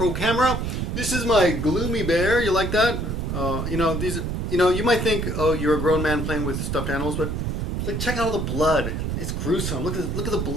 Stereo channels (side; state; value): right; noise; rumble, 2 dB below the sound